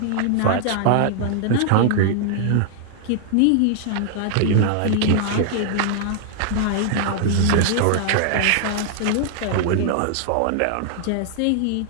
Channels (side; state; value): both; different; correlation 0.00